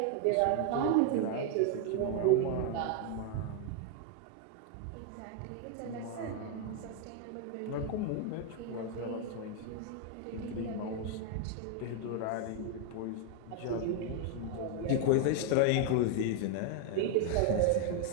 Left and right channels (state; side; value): different; both; correlation 0.00